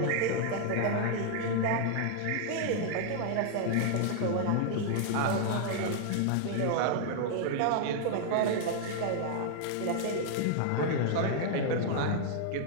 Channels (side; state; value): both; different; correlation -0.01